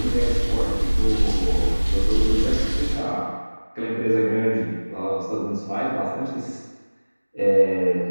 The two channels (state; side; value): inverted; both; correlation -1.00